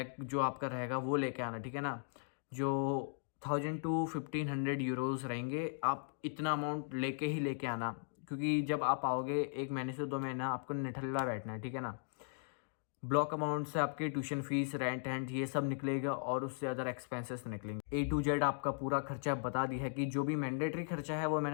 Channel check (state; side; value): silent; right; digital silence